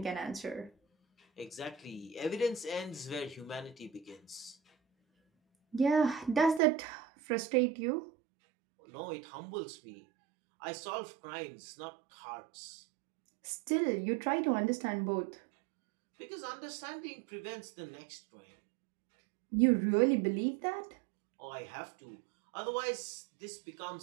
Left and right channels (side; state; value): left; drops out; at 6.6 s